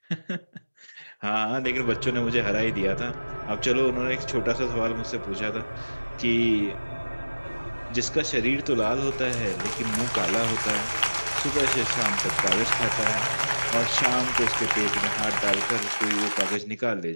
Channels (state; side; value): inverted; both; correlation -1.00